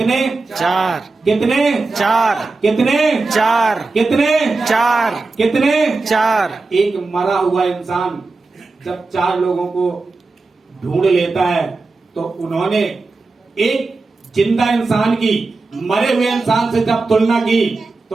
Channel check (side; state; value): left; quieter; 3.7 dB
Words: 4। कितने? 4। कितने? 4। कितने? 4। कितने? 4। एक मरा हुआ इंसान जब 4 लोगों को ढूंढ लेता है, तो उन्होंने एक जिंदा इंसान की मरे हुए इंसान से जब तुलना की,